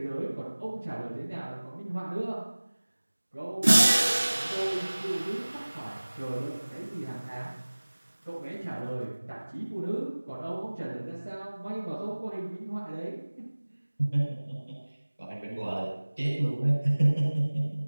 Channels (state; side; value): inverted; both; correlation -1.00